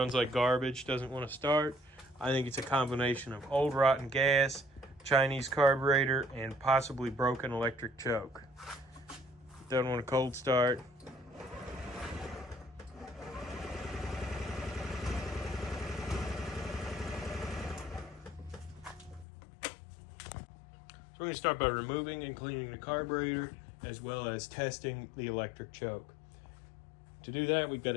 like garbage, doesn't want to start. I think it's a combination of old rotten gas, Chinese carburetor, and possibly broken electric choke. Doesn't want a cold start. So we're going to start by removing and cleaning the carburetor, as well as testing the electric choke. To do that, we've got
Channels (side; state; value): right; drops out; at 19.2 s